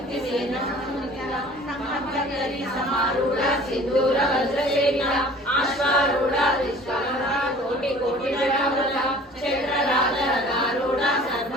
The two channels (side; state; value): both; normal; correlation 0.47